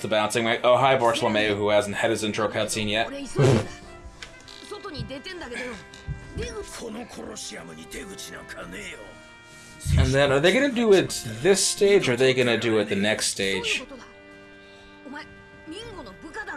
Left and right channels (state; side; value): identical; both; correlation 1.00